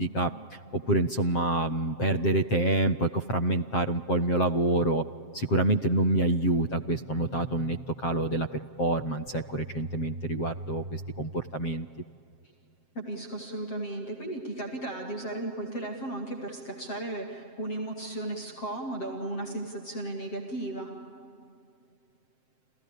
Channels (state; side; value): late; right; 7.6 ms